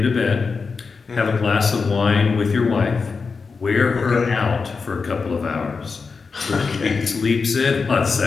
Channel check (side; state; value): right; quieter; 4.9 dB